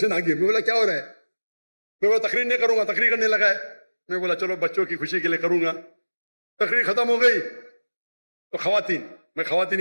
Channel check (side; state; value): both; inverted; correlation -1.00